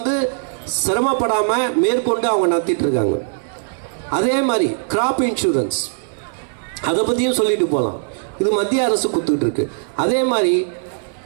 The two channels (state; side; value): silent; left; 63 dB below the other